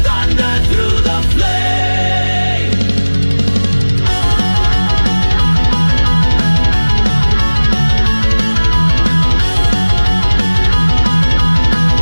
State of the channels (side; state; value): both; inverted; correlation -1.00